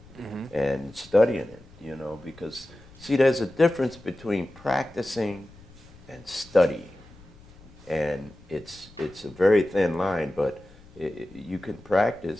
and studying it, you know, because, see, there's a difference between practicing and studying. And it's a very thin line, but you can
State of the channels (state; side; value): noise; left; rumble, 23 dB below the sound